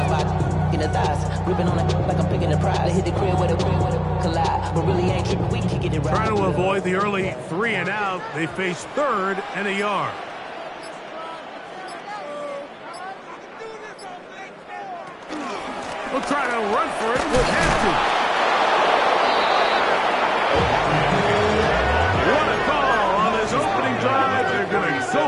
by in the thighs, gripping on it like I'm picking the pride. They hit the crib with a collide, but really ain't tripping. We can kick it right. Trying to avoid the early 3 and out, they face 3rd and a yard. We'll try to run for it with Hampton. What a call on his opening drive. They're going to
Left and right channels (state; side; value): identical; both; correlation 1.00